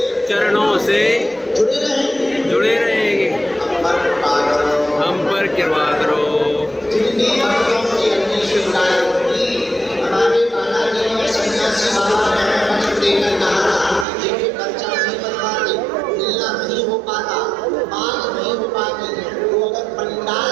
चरणों से जुड़े रहेंगे। हम पर कृपा करो। नहीं हो पाता, बात नहीं हो पाती, वो अगर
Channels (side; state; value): left; drops out; at 14.1 s